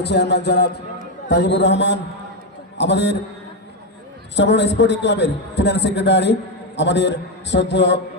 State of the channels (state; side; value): normal; both; correlation 0.06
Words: চেয়ারম্যান জনাব তাজিবুর রহমান, আমাদের সবরণ স্পোর্টিং ক্লাবের ফিনান্স সেক্রেটারি আমাদের শ্রদ্ধেয়